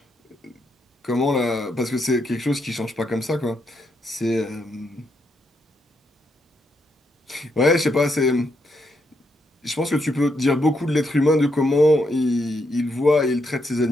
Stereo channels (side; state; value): both; normal; correlation 0.79